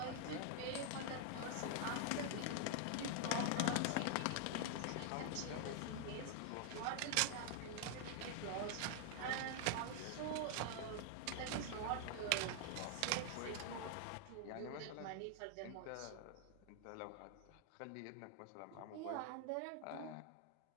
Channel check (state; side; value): different; both; correlation 0.00